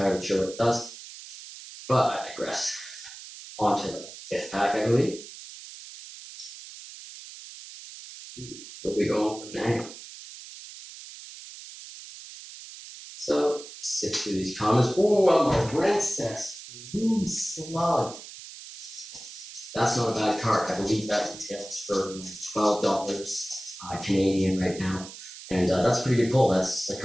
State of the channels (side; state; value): right; noise; hiss, 14 dB below the sound